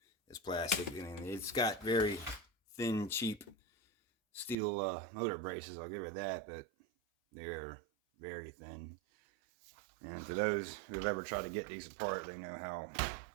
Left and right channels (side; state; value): left; drops out; at 4.5 s